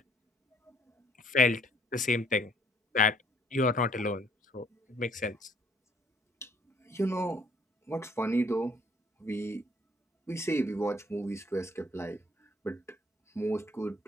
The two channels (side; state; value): both; normal; correlation 0.63